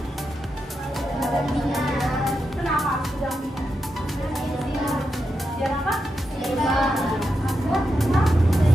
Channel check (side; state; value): both; normal; correlation 0.86